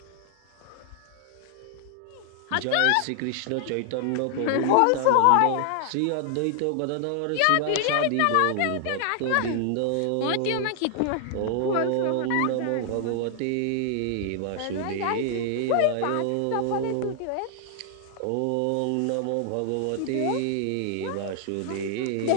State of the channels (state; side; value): different; both; correlation 0.00